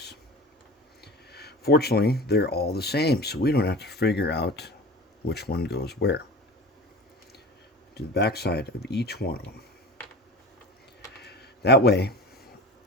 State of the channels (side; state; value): both; normal; correlation 0.35